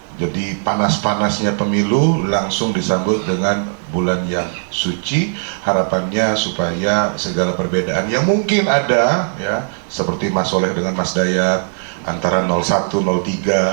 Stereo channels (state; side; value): silent; left; 68 dB below the other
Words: Jadi panas-panasnya pemilu langsung disambut dengan bulan yang suci. Harapannya supaya segala perbedaan yang mungkin ada, ya, seperti Mas Soleh dengan Mas Dayat, antara 01,